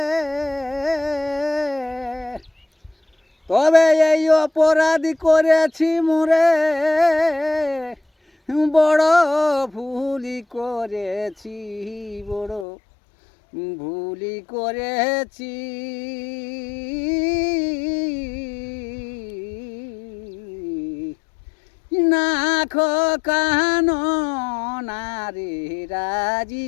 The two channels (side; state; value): right; drops out; at 12.7 s